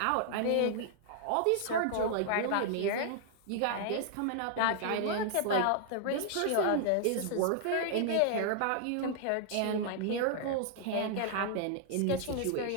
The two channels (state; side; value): different; both; correlation 0.00